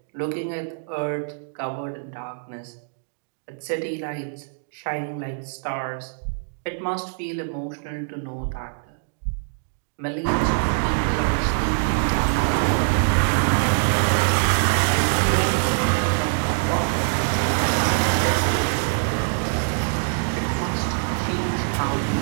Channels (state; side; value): silent; left; digital silence